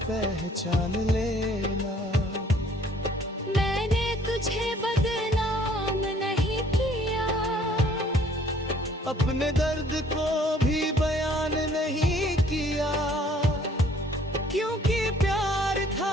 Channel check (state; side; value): normal; both; correlation 0.59